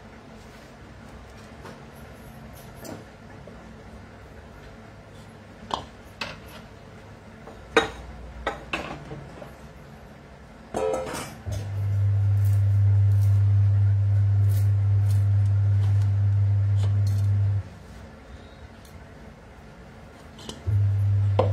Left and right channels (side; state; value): both; identical; correlation 1.00